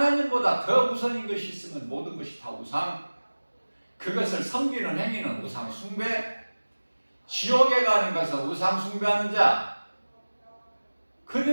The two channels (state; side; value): inverted; both; correlation -1.00